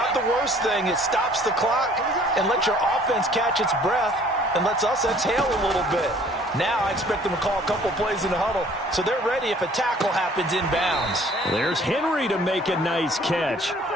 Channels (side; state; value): both; normal; correlation 0.55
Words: the worst thing. It stops the clock and lets your offense catch its breath and lets us exhale a little bit. Now I expect them to call a couple plays in the huddle, so they're ready if a tackle happens inbounds. There's Henry to make a nice catch.